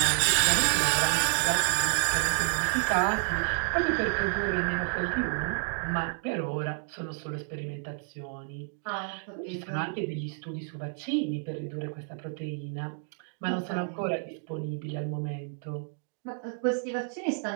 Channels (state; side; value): silent; left; 56 dB below the other